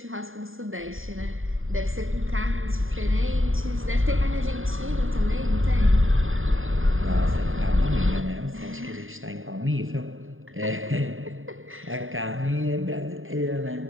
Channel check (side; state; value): left; late; 0.59 ms